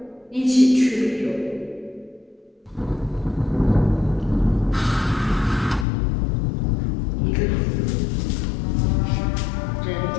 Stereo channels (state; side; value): drops out; right; at 5.9 s